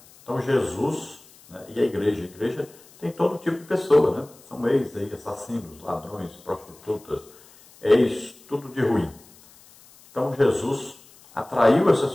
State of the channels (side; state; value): left; noise; hiss, 25 dB below the sound